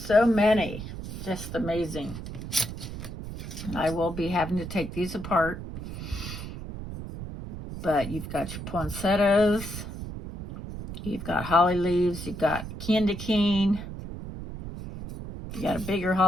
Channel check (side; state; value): right; noise; rumble, 9 dB below the sound